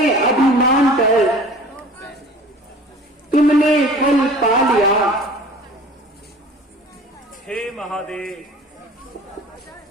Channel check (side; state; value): both; normal; correlation 0.44